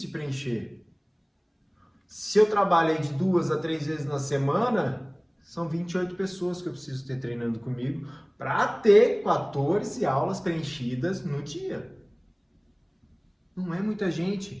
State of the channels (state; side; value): identical; both; correlation 1.00